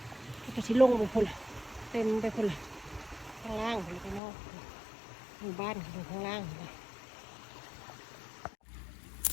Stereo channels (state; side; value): drops out; right; at 4.2 s